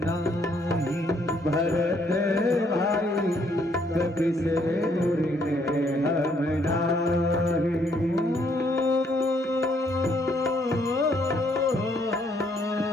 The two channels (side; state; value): both; normal; correlation 0.69